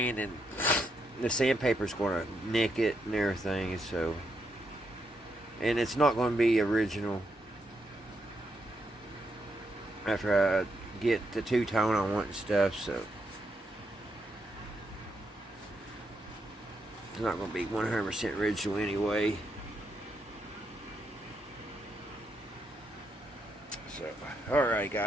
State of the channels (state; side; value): normal; both; correlation 0.80